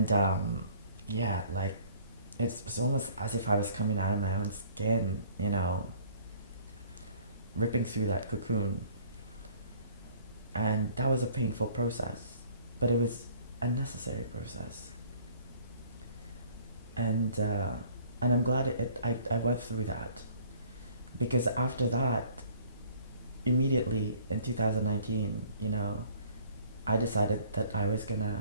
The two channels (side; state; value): both; inverted; correlation -0.54